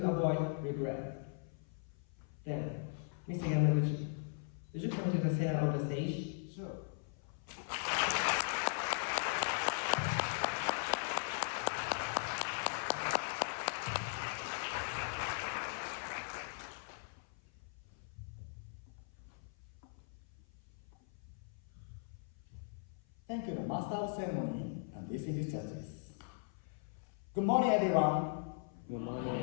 Avoid Regret. Then, Mr. Yamaguchi, would you come to the center of the stage? Sure. Thank you, the Master of Ceremony and distinguished judges. Good morning, everyone. Good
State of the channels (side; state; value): right; silent; 52 dB below the other